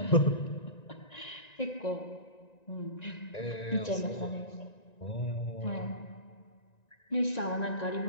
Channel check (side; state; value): right; late; 1.9 ms